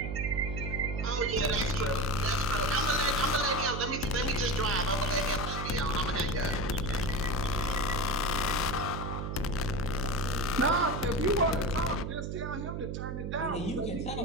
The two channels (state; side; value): noise; right; hum, 4 dB below the sound